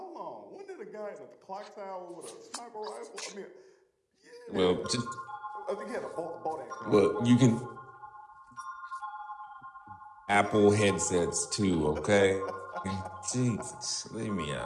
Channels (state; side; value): identical; both; correlation 1.00